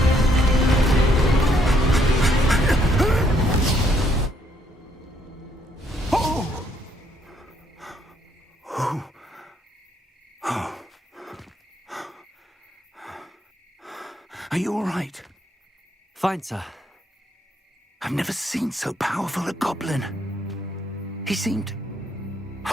Are you all right? Fine, sir. I've never seen so powerful a goblin. He seemed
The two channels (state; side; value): normal; both; correlation 0.70